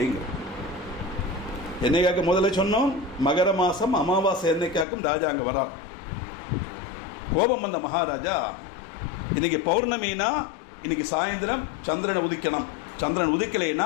என்னைக்காக்க முதல்ல சொன்னோம், மகர மாதம் அமாவாசை என்னைக்காக்கும் ராஜா அங்கே வரார். கோபம் வந்த மகாராஜா, இன்னைக்கு பௌர்ணமினா இன்னைக்கு சாயந்தரம் சந்திரனை உதிக்கணும், சந்திரன்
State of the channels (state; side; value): drops out; right; at 4.9 s